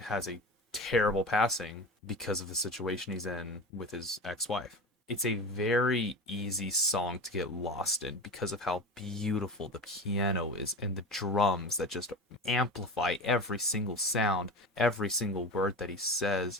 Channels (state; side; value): normal; both; correlation 0.29